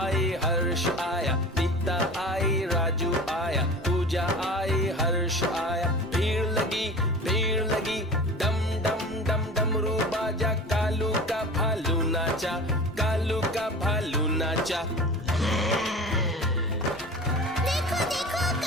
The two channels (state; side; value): normal; both; correlation 0.36